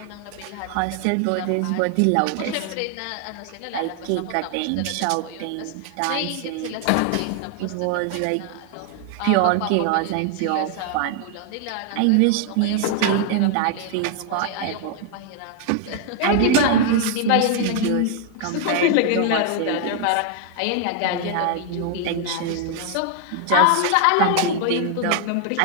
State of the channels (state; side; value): different; both; correlation 0.00